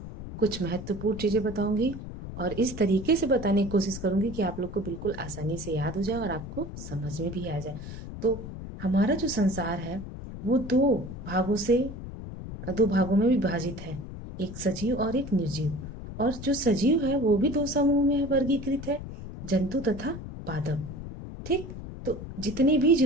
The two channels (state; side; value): noise; left; rumble, 10 dB below the sound